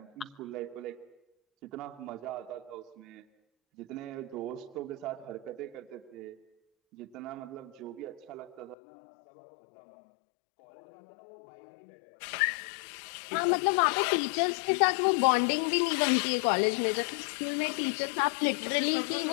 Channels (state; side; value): drops out; right; at 8.8 s